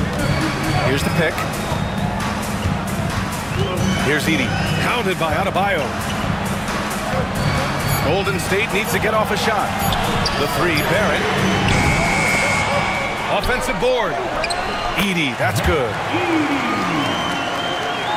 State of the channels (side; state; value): both; identical; correlation 1.00